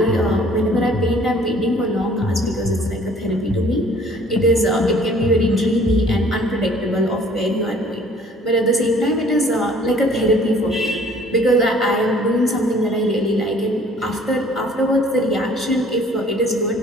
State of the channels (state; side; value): normal; both; correlation 0.55